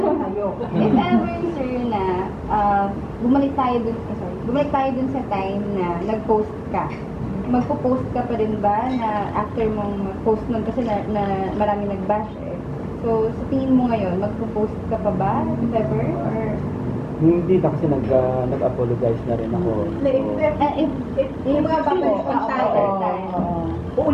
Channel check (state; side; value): identical; both; correlation 1.00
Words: If ever, sir, na bumalik tayo dun sa time na nag-post ka, magpo-post ka pa rin ba na after mong mag-post nun kasi na marami nag-bash eh. So, sa tingin mo ngayon, magpo-post ka pa ba if ever? Or Hindi na kasi nag-apologize na rin ako. If mga babalik ang tayo,